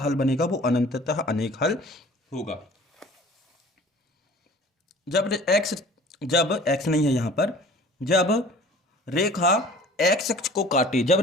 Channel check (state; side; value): normal; both; correlation 0.47